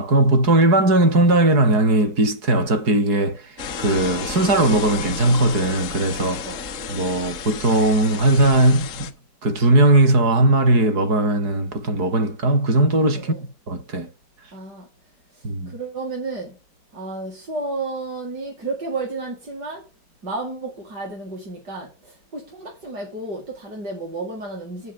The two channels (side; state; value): left; late; 4.7 ms